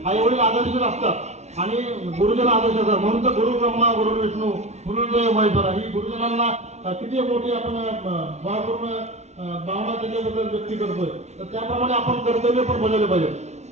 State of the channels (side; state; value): left; late; 0.32 ms